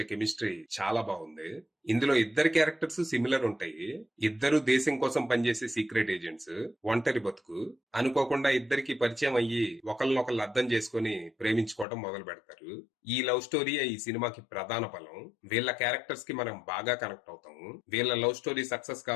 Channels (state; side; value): drops out; right; at 11.9 s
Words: కెమిస్ట్రీ చాలా బాగుంది. ఇందులో ఇద్దరు క్యారెక్టర్స్ సిమిలర్ ఉంటాయి. ఇద్దరు దేశం కోసం పనిచేసే సీక్రెట్ ఏజెంట్స్. ఒంటరి బతుకు. అనుకోకుండా ఇద్దరికి పరిచయం అయ్యి ఒకళ్ళనొకళ్ళు అర్థం చేసుకుని ప్రేమించుకోవడం మొదలు పెడతారు. ఈ లవ్ స్టోరీయే ఈ సినిమాకి ప్రధాన బలం. వీళ్ళ క్యారెక్టర్స్ కి మనం బాగా కనెక్ట్ అవుతాము. వీళ్ళ లవ్ స్టోరీ సక్సెస్